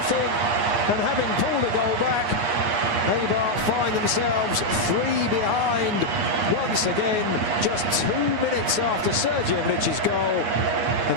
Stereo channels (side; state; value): left; late; 9.5 ms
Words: and having pulled a goal back, Eibar find themselves 3 behind once again, just 2 minutes after Sergi Enrich's goal, and